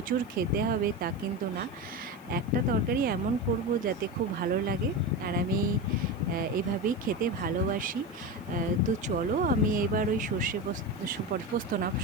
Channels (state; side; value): noise; left; hiss, 29 dB below the sound